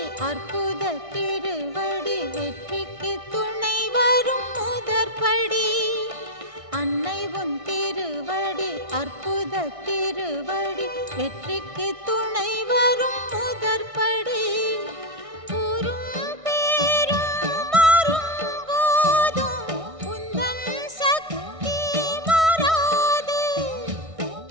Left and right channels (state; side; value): late; left; 1.6 ms